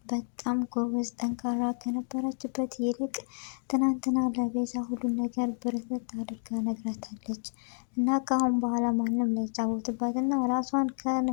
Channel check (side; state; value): right; silent; digital silence